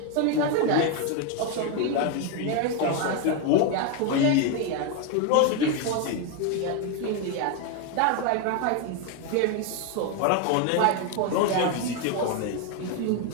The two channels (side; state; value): both; different; correlation 0.02